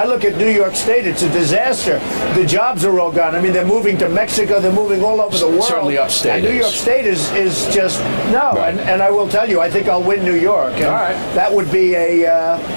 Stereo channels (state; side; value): inverted; both; correlation -1.00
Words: look at New York State, it's a disaster. The jobs are all gone. I mean, they're moving to Mexico, they're moving all over the world. Certainly upstate. And New York State is just, no. Right. And I will tell you, I think I'll win New York. And all right. That would be a